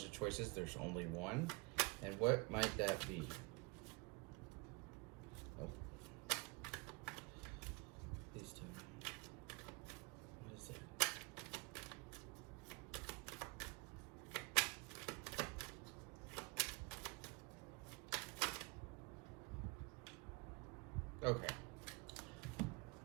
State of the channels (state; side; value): quieter; left; 28.2 dB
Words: of choices, there's only one. And what might that be? Oh. Please tell me. What is it? Okay.